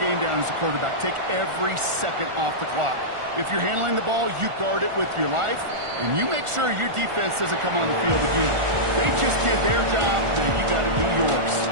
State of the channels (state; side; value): late; left; 1.4 ms